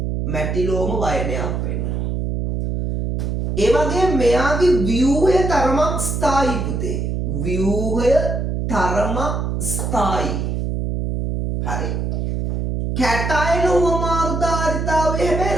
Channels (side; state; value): right; noise; hum, 1 dB below the sound